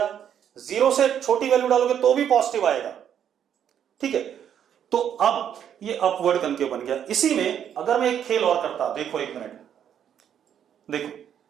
0 से छोटी वैल्यू डालोगे तो भी पॉजिटिव आएगा। ठीक है, तो अब ये अपवर्ड कनकेव बन गया। इसी में अगर मैं एक खेल और करता, देखो एक मिनट, देखो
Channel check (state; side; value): quieter; left; 9.1 dB